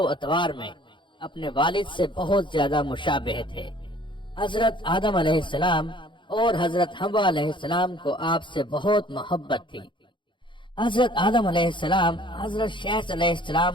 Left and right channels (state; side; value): late; right; 0.23 ms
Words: اطوار میں اپنے والد سے بہت زیادہ مشابہ تھے۔ حضرت آدم علیہ السلام اور حضرت حوا علیہ السلام کو آپ سے بہت محبت تھی۔ حضرت آدم علیہ السلام حضرت شیث علیہ